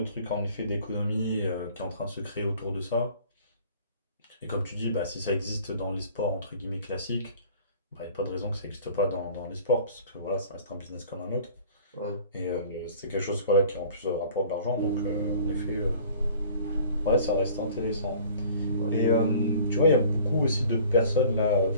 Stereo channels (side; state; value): both; inverted; correlation -0.49